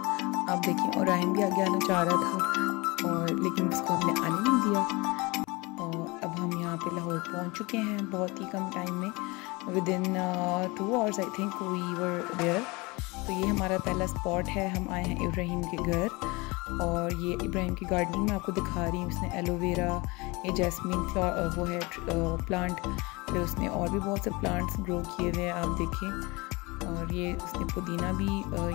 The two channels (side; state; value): right; quieter; 25.0 dB